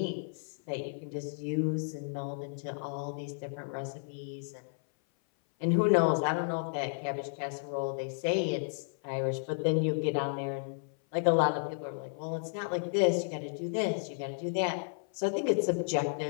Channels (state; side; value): silent; right; 56 dB below the other